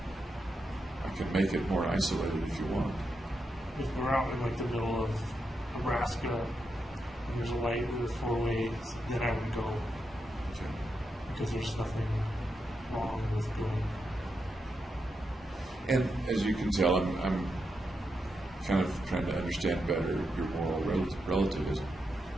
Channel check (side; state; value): both; normal; correlation 0.85